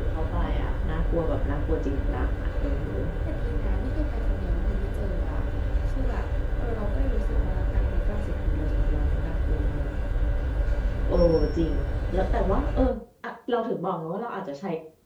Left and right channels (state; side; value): identical; both; correlation 1.00